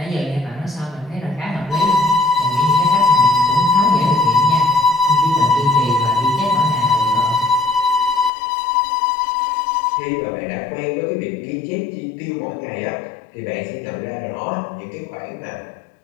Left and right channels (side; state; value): right; drops out; at 8.3 s